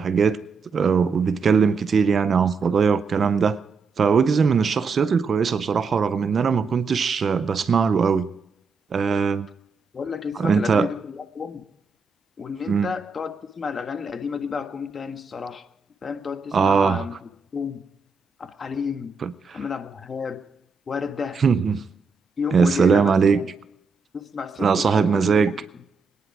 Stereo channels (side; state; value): left; quieter; 4.6 dB